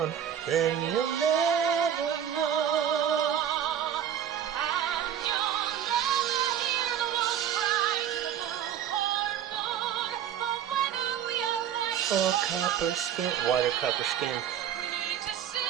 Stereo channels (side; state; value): left; quieter; 9.5 dB